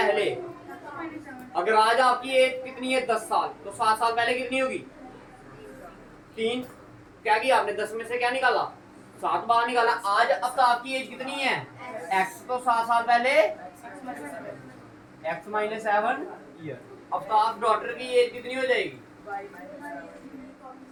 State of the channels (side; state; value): both; identical; correlation 1.00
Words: अगर आज आपकी एज कितनी है, 10 साल, तो 7 साल पहले कितनी होगी, 3। क्या किया आपने, 10 में से क्या निकाला, 7 बाहर निकाला। आज आफ्ताब की एज कितनी है, x, तो 7 साल पहले x - 7 ईयर। आफ्ताब डॉटर की एज कितनी हो जाएगी,